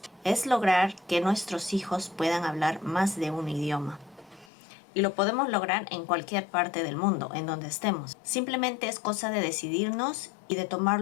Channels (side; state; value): right; drops out; at 4.5 s